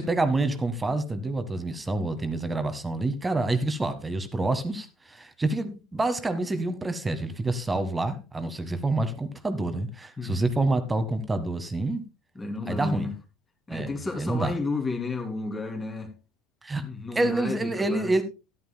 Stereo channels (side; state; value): both; normal; correlation 0.85